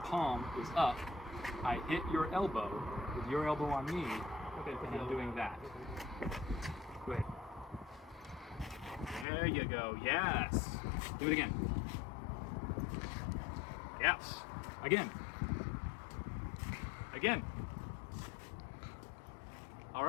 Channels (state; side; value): drops out; right; at 9.2 s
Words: palm is up, I hit your elbow with your elbow on me, Okay, and I'm doing that. Go ahead. There you go, yes. Do it again. Yes. Again. All